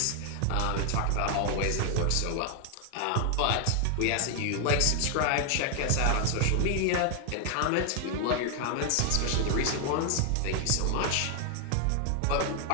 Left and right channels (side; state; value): both; different; correlation 0.00